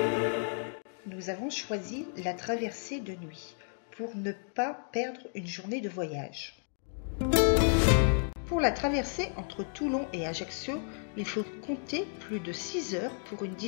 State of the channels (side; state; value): right; silent; 56 dB below the other